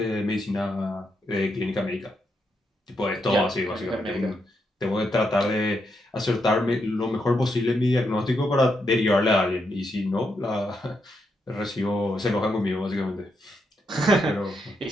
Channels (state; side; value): normal; both; correlation 0.81